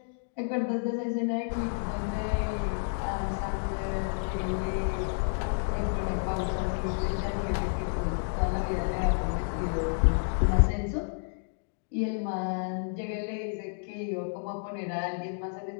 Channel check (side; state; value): right; silent; digital silence